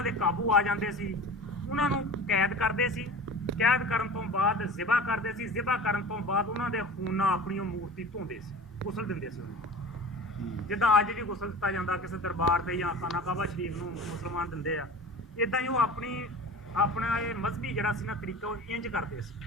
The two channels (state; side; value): normal; both; correlation 0.37